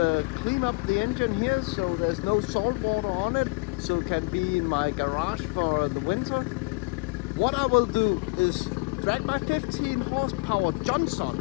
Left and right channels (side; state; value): right; quieter; 27.3 dB